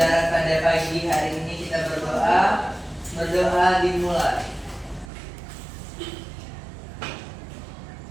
pada pagi hari ini kita berdoa. Berdoa dimulai.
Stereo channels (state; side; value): drops out; left; at 5.1 s